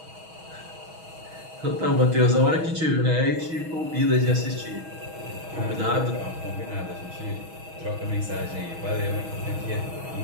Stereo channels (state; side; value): late; left; 6.3 ms